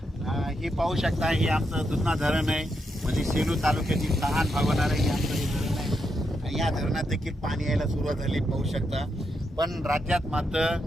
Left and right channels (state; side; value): normal; both; correlation 0.82